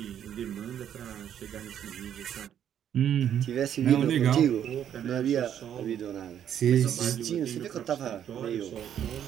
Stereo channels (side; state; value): left; quieter; 9.7 dB